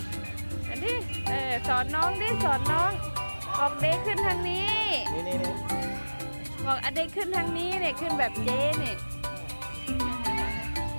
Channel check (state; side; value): inverted; both; correlation -1.00